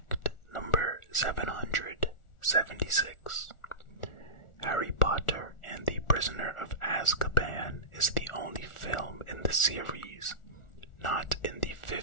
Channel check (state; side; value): late; right; 1.4 ms